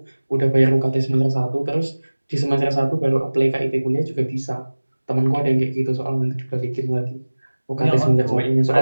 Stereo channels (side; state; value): both; inverted; correlation -1.00